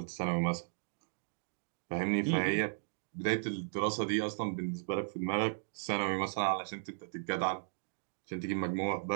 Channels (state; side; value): silent; left; digital silence